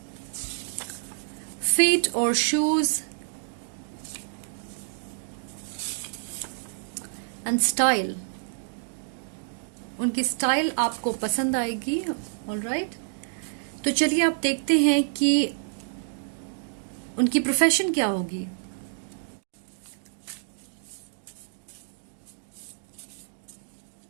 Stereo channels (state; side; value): silent; left; digital silence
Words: फीट और शूज एंड स्टाइल, उनकी स्टाइल आपको पसंद आएगी। ऑलराइट, तो चलिए आप देखते हैं कि उनकी प्रोफेशन क्या होगी।